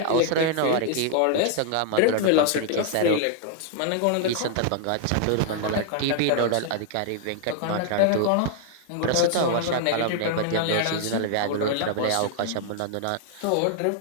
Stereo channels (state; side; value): different; both; correlation 0.00